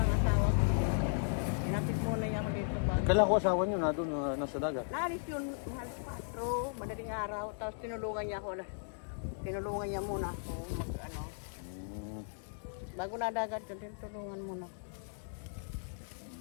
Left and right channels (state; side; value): silent; right; digital silence